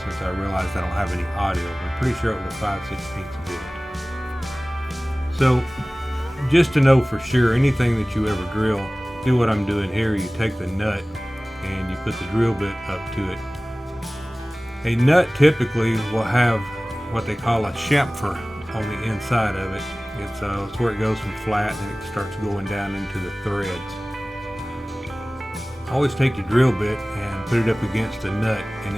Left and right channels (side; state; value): both; normal; correlation 0.98